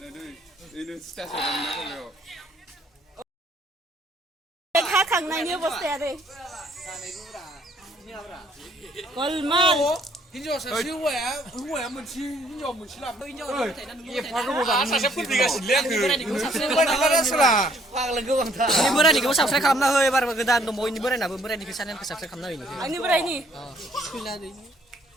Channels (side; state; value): both; normal; correlation 0.64